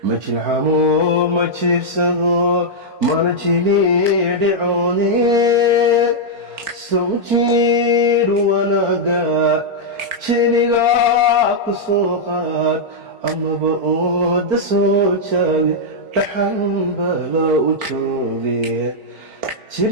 ma jilcamo ma jiibsado mana jiliidhicoone sawjiidh wanaaga jiligaa ku soo qaad amaba ooda soo jaabi dhaxan bala u jooge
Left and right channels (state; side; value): late; left; 4.4 ms